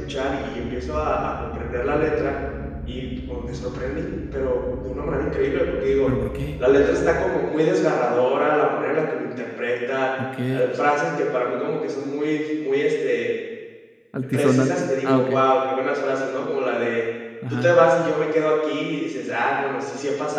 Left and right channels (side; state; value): both; identical; correlation 1.00